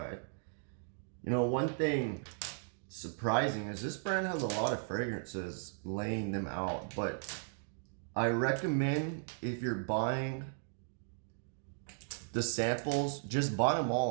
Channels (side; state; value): left; silent; digital silence